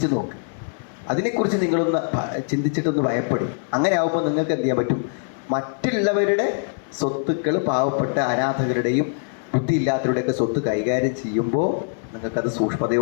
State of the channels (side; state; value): right; silent; digital silence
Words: നോക്ക്. അതിനെക്കുറിച്ച് നിങ്ങളൊന്ന് ചിന്തിച്ചിട്ടൊന്ന് ഭയപ്പെടും. അങ്ങനെ ആകുമ്പോൾ നിങ്ങൾക്ക് എന്ത് ചെയ്യാൻ പറ്റും, മറ്റുള്ളവരുടെ സ്വത്തുക്കൾ പാവപ്പെട്ട അനാഥകരുടെയും ബുദ്ധിയില്ലാത്തവരുടെയൊക്കെ സ്വത്ത് കൈകാര്യം ചെയ്യുമ്പോൾ നിങ്ങൾക്കത്